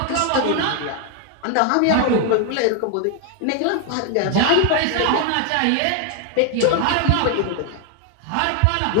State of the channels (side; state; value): both; different; correlation 0.00